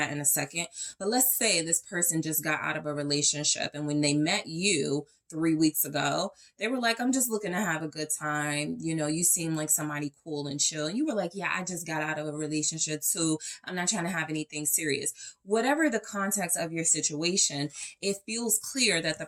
in a second. But let's say this person just got out of a relationship, and when they met you 3 weeks ago, they were like, I'm just looking to have a good time. You know, you seem like somebody cool and chill. And you were like, yeah, I just got out of a relationship too. I'm not trying to have anything serious. Whatever the context of your situation, it feels clear that the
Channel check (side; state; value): both; identical; correlation 1.00